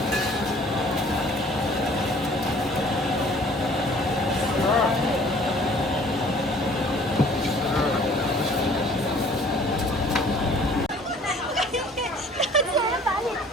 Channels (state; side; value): normal; both; correlation 0.53